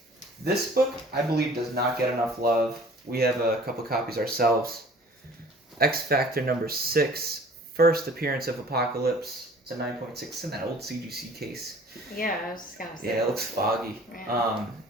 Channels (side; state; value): both; normal; correlation 0.49